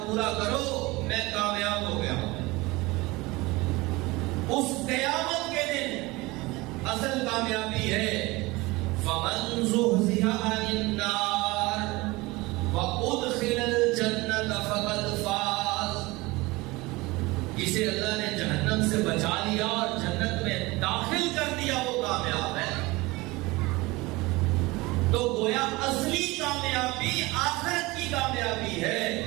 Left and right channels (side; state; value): left; quieter; 22.2 dB